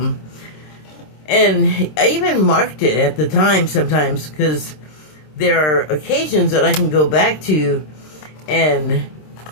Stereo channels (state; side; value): late; right; 26 ms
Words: And I even marked it at the time sometimes, because there are occasions that I can go back to, and